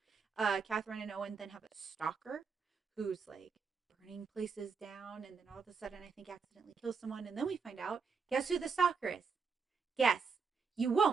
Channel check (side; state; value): left; quieter; 5.4 dB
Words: Catherine and Owen then have a stalker who's like burning places down and then all of a sudden I think accidentally kills someone. And then we find out, guess who the stalker is? Guess. You